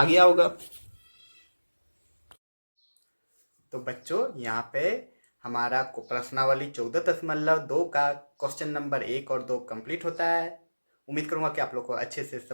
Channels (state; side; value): inverted; both; correlation -1.00